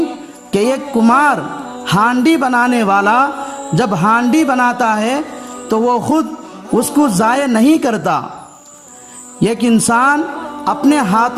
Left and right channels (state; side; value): identical; both; correlation 1.00